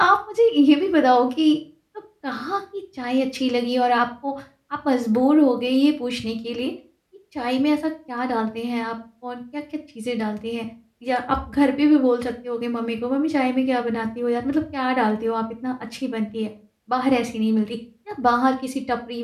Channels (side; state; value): both; identical; correlation 1.00